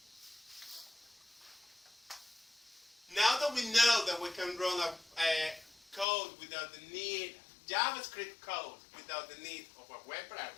Now that we know that we can run a code without the need, JavaScript code without the need of a web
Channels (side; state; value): right; drops out; at 6.1 s